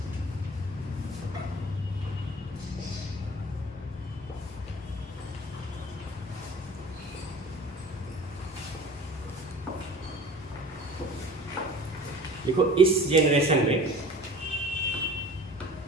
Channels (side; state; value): both; normal; correlation 0.42